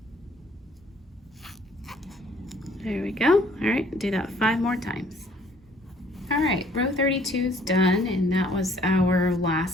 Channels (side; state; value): both; normal; correlation 0.59